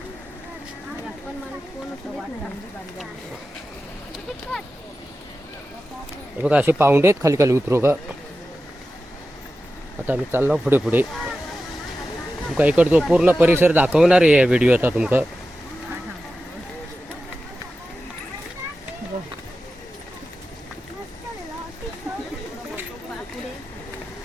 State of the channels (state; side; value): normal; both; correlation 0.93